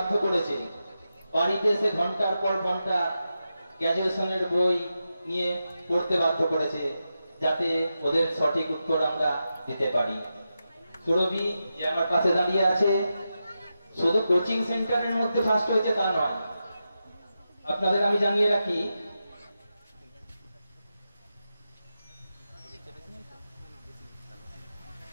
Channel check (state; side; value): inverted; both; correlation -0.89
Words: করেছে, বাড়িতে এসে ঘন্টার পর ঘন্টা গ্র্যাজুয়েশনের বই নিয়ে পড়তে বাধ্য করেছে, যাতে ওদের সঠিক উত্তর আমরা দিতে পারি। সুরভি যে আমার পাশে দাঁড়িয়ে আছে, শুধু কোচিং সেন্টারের মধ্যে ফার্স্ট হয়েছে তা নয়। আপনাদের আমি জানিয়ে রাখি,